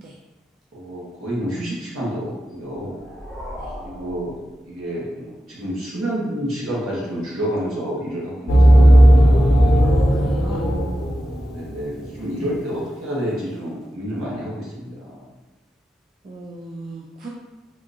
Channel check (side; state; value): both; normal; correlation 0.92